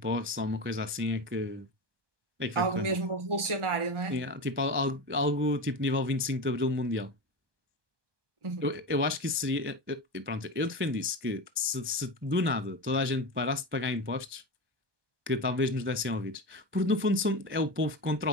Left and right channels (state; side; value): late; left; 1.2 ms